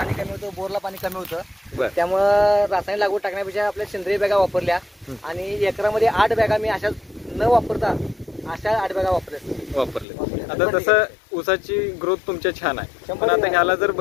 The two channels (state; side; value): drops out; right; at 10.1 s